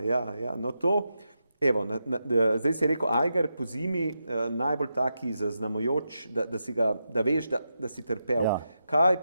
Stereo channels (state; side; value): inverted; both; correlation -0.87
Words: no to, evo, zdaj si rekel Eiger po zimi, najbolj taki zaznamujoč, da veš, da si trpel. Kaj